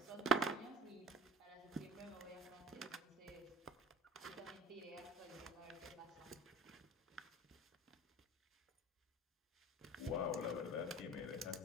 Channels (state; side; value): normal; both; correlation 0.41